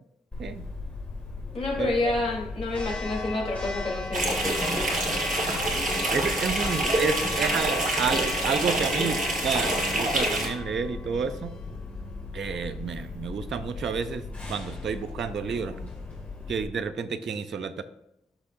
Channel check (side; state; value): both; normal; correlation 0.62